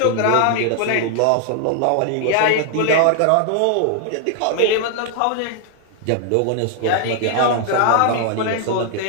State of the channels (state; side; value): different; both; correlation 0.00